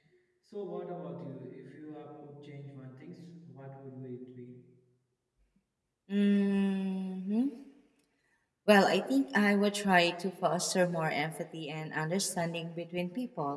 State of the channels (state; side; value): identical; both; correlation 1.00